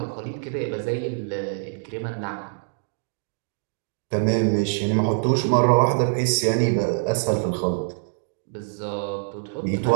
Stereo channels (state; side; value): silent; left; digital silence